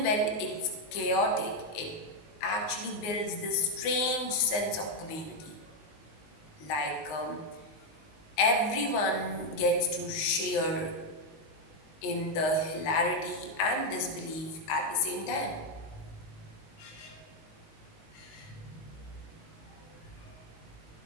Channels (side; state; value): right; late; 19 ms